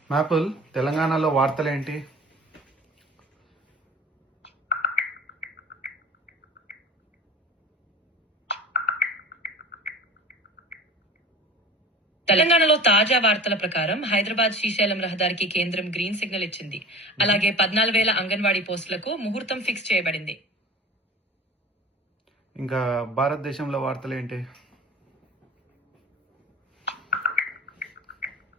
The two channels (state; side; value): normal; both; correlation 0.38